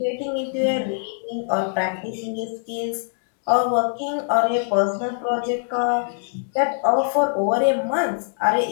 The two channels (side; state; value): right; silent; digital silence